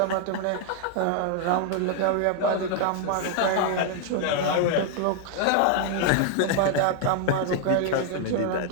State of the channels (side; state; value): both; different; correlation 0.00